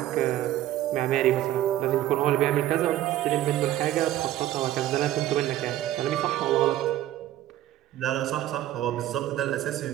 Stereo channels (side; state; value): left; quieter; 13.7 dB